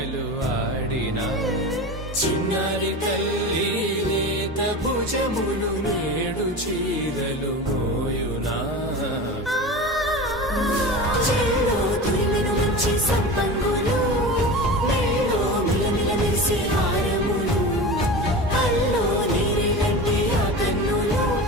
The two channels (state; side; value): normal; both; correlation 0.30